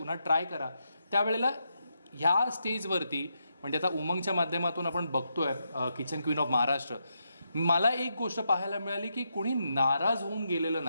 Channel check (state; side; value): inverted; both; correlation -0.82